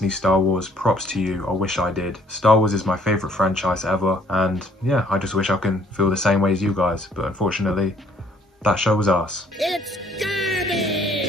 Star Wars, props to you. I wish I did. Star Wars is my favourite franchise ever, and yeah, I just wish I can feel the same way as you guys, but unfortunately that show was arse. It's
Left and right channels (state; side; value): normal; both; correlation 0.62